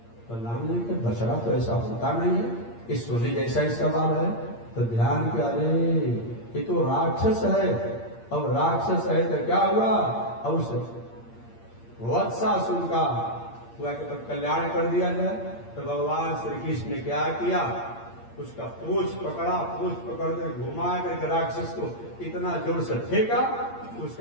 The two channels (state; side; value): late; right; 8.7 ms